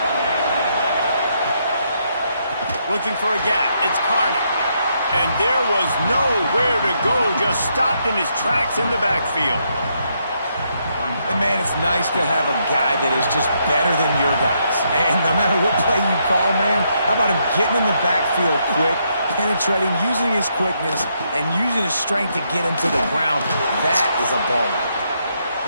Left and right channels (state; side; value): inverted; both; correlation -0.77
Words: Looking for a gap. It's Carney. And there was nowhere to go. Just stopped in his tracks in the backfield. And, man, it's nice to have a guy that is just better than your guys. And no matter what play you call, man, how about him getting in the backfield quick, penetrating, using his quickness, and using his strength to get him to the ground. That is a ball.